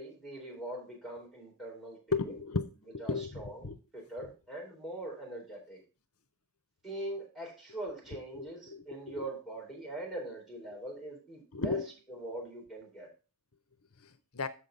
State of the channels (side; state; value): both; normal; correlation 0.06